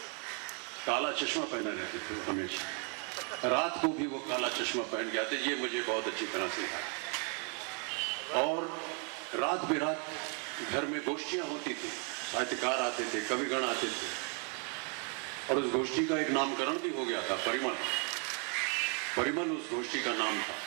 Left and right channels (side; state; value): left; quieter; 38.1 dB